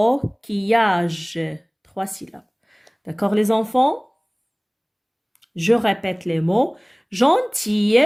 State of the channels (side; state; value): both; identical; correlation 1.00